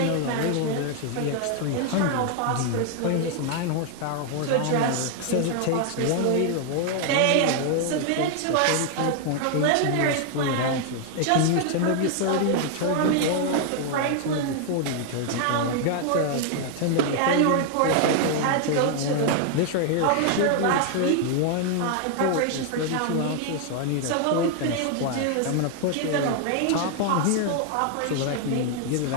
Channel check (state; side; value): different; both; correlation 0.00